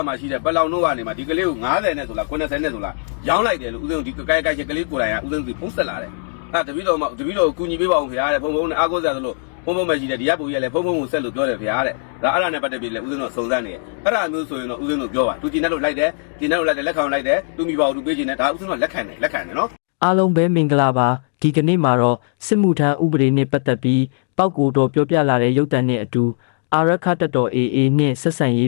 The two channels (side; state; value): right; silent; digital silence